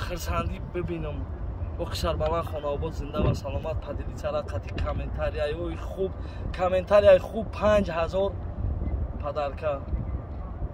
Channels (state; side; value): identical; both; correlation 1.00